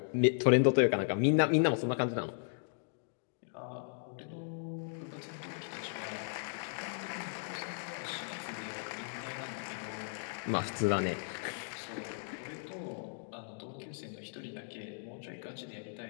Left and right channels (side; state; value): right; silent; digital silence